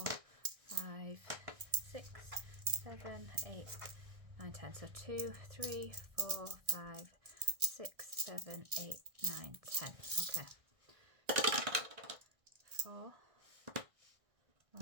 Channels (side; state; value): left; late; 1.6 ms